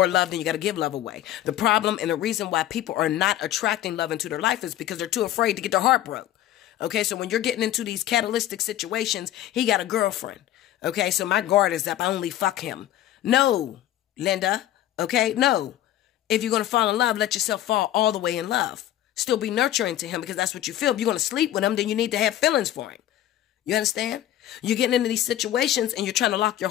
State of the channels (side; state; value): right; quieter; 12.8 dB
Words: love, then you got to give love away. The problem and the reason why people are not attracting love into their life is because they're too afraid to get their heart broke. Okay, so when you're getting into these catalytic situations, he got a girlfriend. Okay, so my guard is up. I only fuck him. No, Linda. Okay, no. If you're going to fall in love, let yourself fall all the way in love. Still be nurturing to him because that's what you feel. If you're going to sleep with him, then you need to have feelings for him. You understand? You're getting into these situations and you're trying to lock your